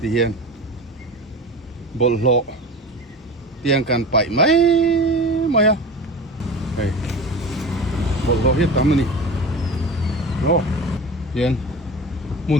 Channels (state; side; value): normal; both; correlation 0.33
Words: hian bol lo tiang kan pai mai mai ha hey bol lo hiat tam ni no hian